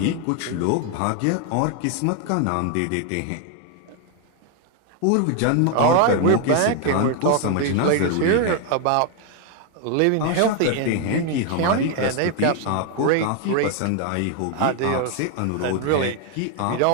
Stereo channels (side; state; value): both; different; correlation 0.00